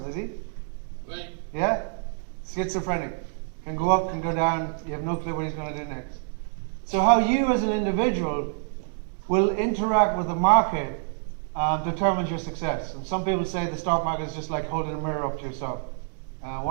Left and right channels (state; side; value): silent; left; digital silence